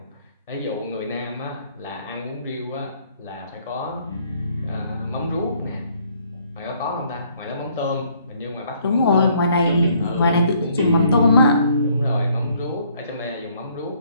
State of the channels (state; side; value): inverted; both; correlation -0.64